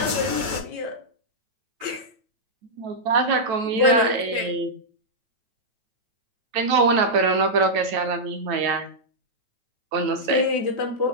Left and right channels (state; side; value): late; left; 9.2 ms